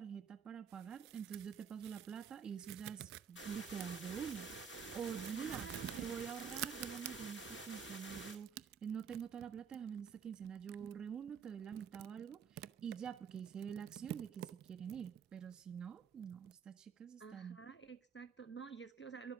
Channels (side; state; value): left; quieter; 6.9 dB